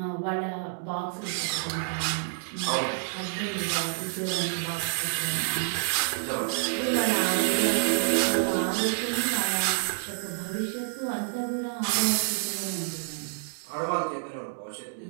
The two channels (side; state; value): left; silent; digital silence